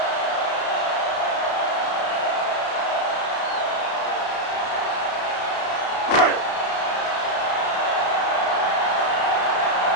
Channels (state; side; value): late; right; 33 ms